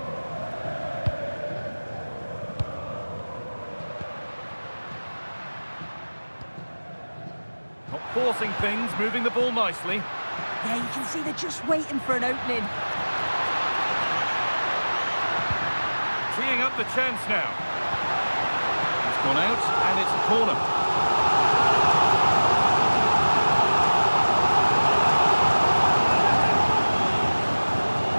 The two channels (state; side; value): inverted; both; correlation -1.00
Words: Not forcing things, moving the ball nicely. Yeah, you can see they're just waiting for an opening. Teeing up the chance now. It's gone out, and it's a corner.